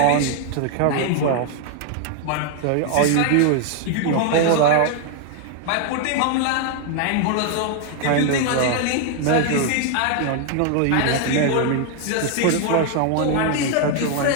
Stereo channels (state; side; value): different; both; correlation 0.00